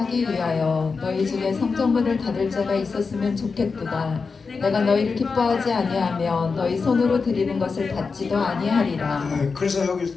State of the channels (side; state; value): right; quieter; 4.8 dB